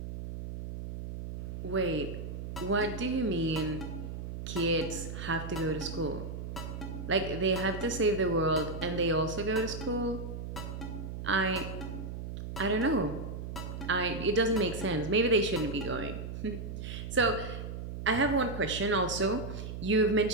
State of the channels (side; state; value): right; noise; hum, 7 dB below the sound